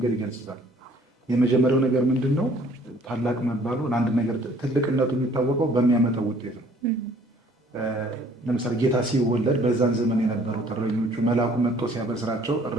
ይገልጹታል። የመጀመሪያው ነገር ምንድን ነው? ታላቅ መባሉ ለአንድ ነገር ትልቅነቱ የሚታወቀው በሚያመጣው ውጤት ነው። ለምሳሌ ጌታ ሲወለድ በዛን ዘመን የነበሩት እረኞቹ መልአኩ መጥቶ ሲያበስራቸው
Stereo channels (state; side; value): normal; both; correlation 0.58